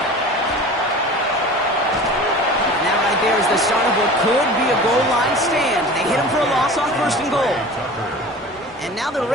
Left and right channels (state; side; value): normal; both; correlation 0.38